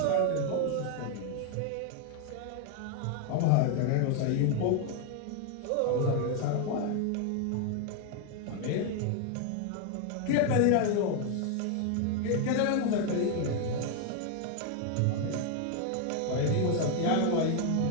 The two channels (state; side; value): different; both; correlation 0.01